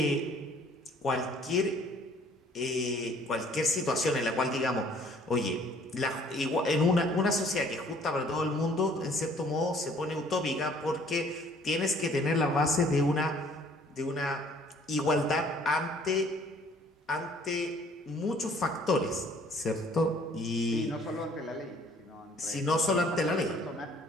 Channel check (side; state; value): both; normal; correlation 0.58